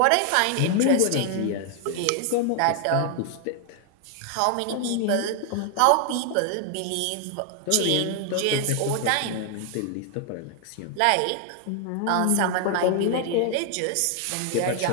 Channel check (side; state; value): both; different; correlation 0.00